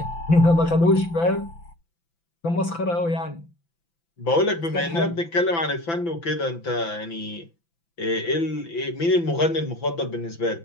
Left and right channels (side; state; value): right; late; 5.9 ms